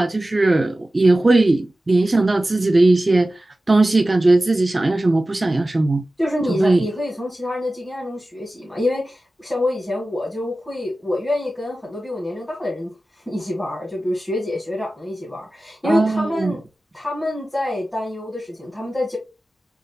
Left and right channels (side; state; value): both; normal; correlation 0.96